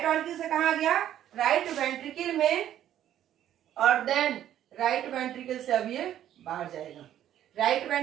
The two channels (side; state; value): left; quieter; 11.4 dB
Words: ऑर्किल से कहाँ आ गया, राइट वेंट्रिकल में, और देन राइट वेंट्रिकल से अब ये बाहर जाएगा। राइट